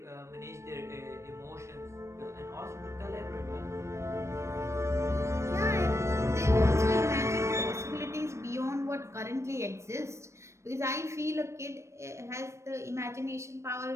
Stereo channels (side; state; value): left; late; 0.13 ms